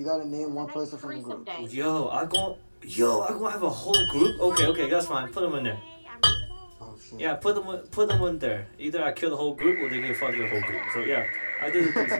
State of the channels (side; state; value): both; inverted; correlation -1.00